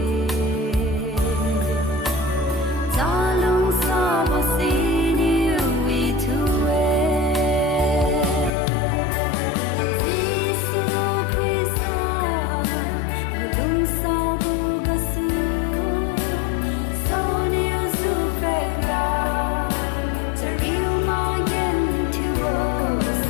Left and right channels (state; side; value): drops out; right; at 8.5 s